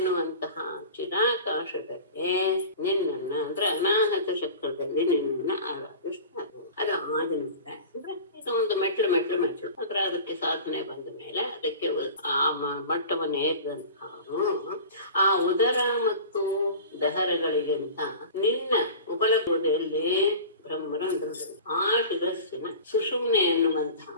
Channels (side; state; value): both; inverted; correlation -0.37